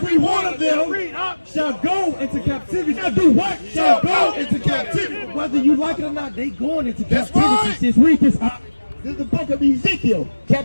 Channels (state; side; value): inverted; both; correlation -1.00